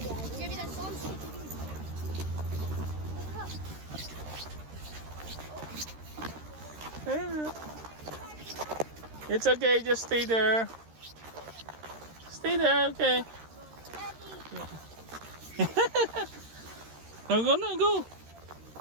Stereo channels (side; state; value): left; late; 13 ms